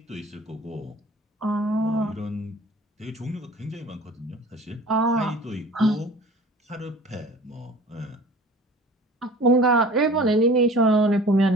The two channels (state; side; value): normal; both; correlation 0.44